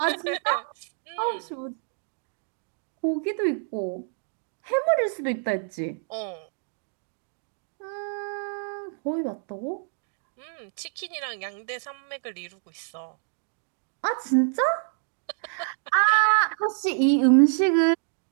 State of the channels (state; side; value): silent; left; 60 dB below the other